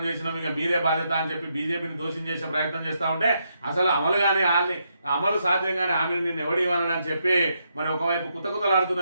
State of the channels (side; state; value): both; inverted; correlation -0.79